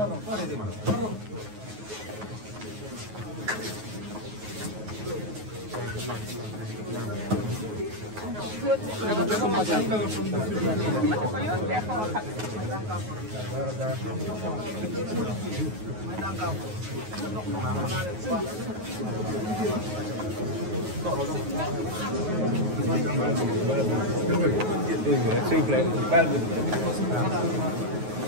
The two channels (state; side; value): late; left; 9.4 ms